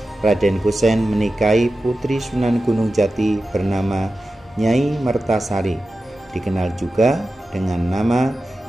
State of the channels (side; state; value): both; normal; correlation 0.93